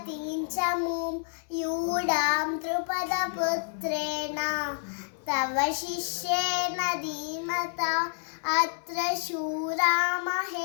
च मुं यूढां द्रुपदपुत्रेण तव शिष्येण धीमता अत्र शूरा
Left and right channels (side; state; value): right; silent; digital silence